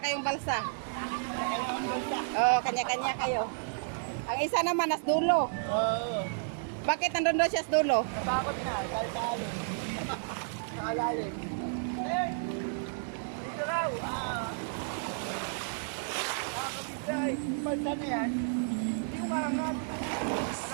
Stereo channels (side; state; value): left; silent; digital silence